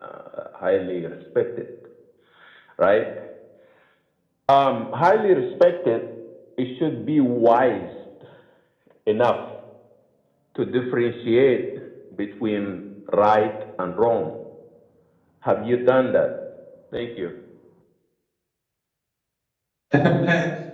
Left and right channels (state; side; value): identical; both; correlation 1.00